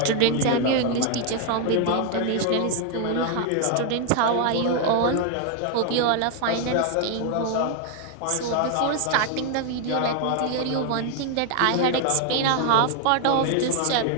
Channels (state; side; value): different; both; correlation 0.00